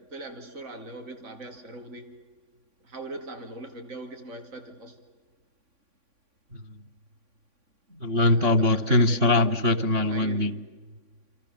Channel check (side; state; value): left; late; 3.5 ms